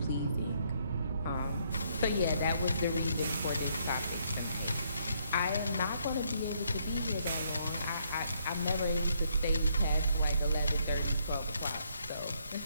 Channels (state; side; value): inverted; both; correlation -0.71